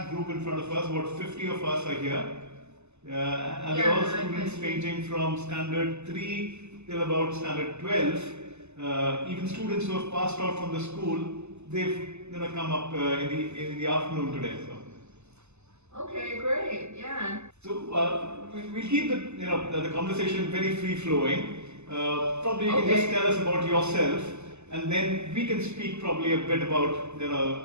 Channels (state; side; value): late; left; 0.82 ms